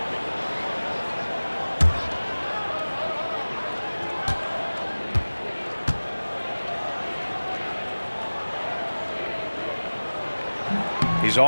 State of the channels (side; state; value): both; inverted; correlation -1.00